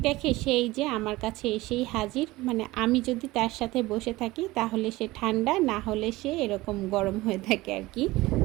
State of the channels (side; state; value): left; quieter; 19.4 dB